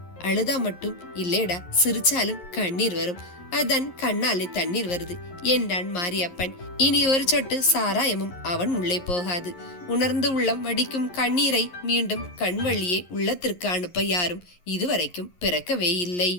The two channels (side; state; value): right; late; 11 ms